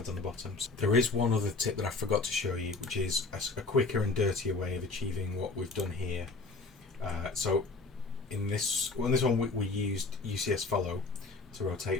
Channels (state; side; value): quieter; right; 3.7 dB